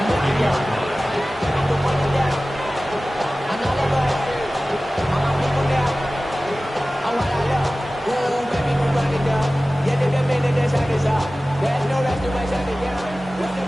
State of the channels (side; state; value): both; normal; correlation 0.97